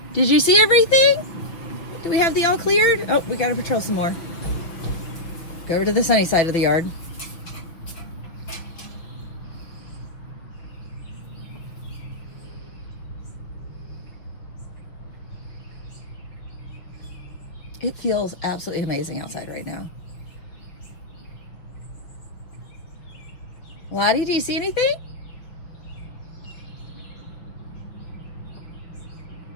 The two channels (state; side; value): late; right; 6.0 ms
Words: Did you see everything? Do we have the all cleared? Oh, we got to patrol some more. Go over to the sunny side of the yard. It feels absolutely amazing outside right now. Lottie, do you see anything?